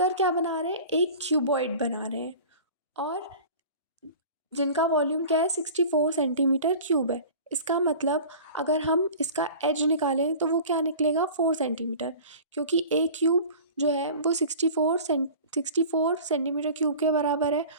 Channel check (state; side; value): inverted; both; correlation -0.40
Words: क्या बना रहे हैं, एक क्यूबॉइड बना रहे हैं और जिनका वॉल्यूम क्या है 64 सेंटीमीटर क्यूब है। इसका मतलब अगर हम इसका एज निकालें तो वो क्या निकलेगा 4 सेंटीमीटर, क्योंकि एक क्यूब जो है वो 64 सेंटीमीटर क्यूब के बराबर है